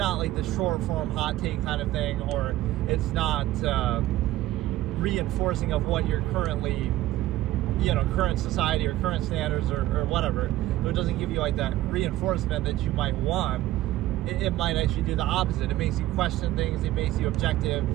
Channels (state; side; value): quieter; left; 15.3 dB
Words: like the short form hot take kind of thing, or it's not reinforcing of what you're currently, current society or current standards or whatever. So it doesn't give you like that reinforcement that you might want. It might actually do the opposite. It makes you question things, it makes you objective,